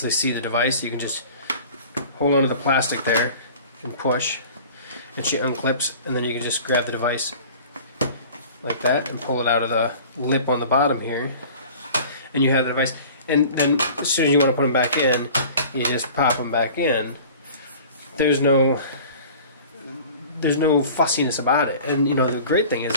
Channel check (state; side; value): inverted; both; correlation -0.43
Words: see the device. You can just hold onto the plastic there and push, and she unclips, and then you can just grab the device like that and pull it out of the lip on the bottom here, and you have the device. And then as soon as you want to put them back in, you just pop them back in. There's no fussiness about it. And you know, the great thing is